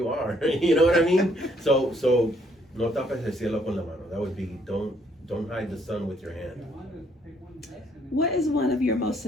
are. You know what I mean? So no tapes el cielo con la mano. That would be don't hide the sun with your hand. What is one of your most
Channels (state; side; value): normal; both; correlation 0.67